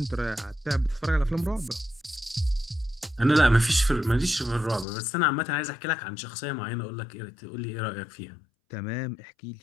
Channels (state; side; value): drops out; right; at 4.9 s